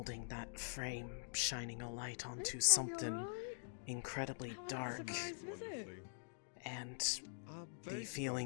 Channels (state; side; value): silent; right; digital silence